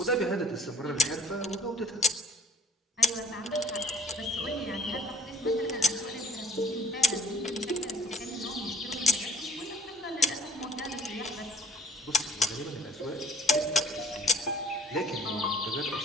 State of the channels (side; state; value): both; normal; correlation 0.53